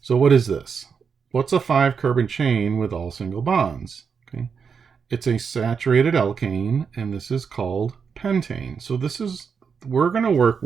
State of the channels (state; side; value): quieter; left; 6.2 dB